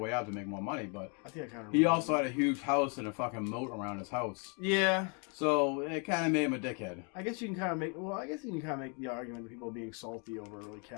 way out to make more money, but I think I kind of. He also had a huge house and a fucking moat around his house. Yeah. So it kind of made him a dickhead. I guess you can kind of make. Well, I guess you can kind of make the argument of people being salty over like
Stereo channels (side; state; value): right; quieter; 36.6 dB